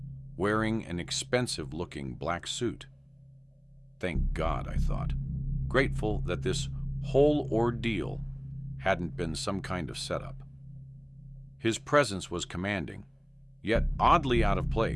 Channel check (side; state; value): both; identical; correlation 1.00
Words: wearing an expensive-looking black suit. Thank God, I thought, grateful that this whole ordeal hadn't been some kind of setup. His presence was commanding, yet oddly out of